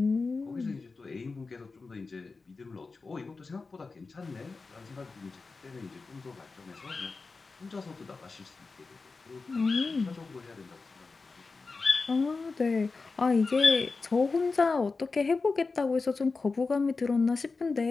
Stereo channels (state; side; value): quieter; right; 4.1 dB